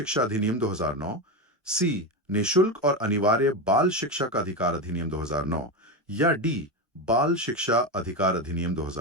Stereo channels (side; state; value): both; normal; correlation 0.15